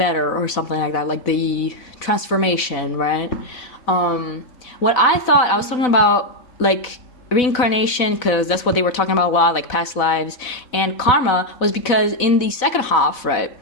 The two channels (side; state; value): right; late; 4.0 ms